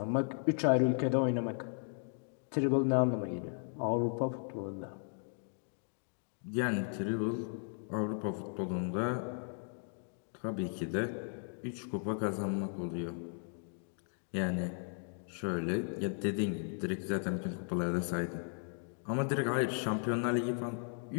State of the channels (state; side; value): silent; right; 54 dB below the other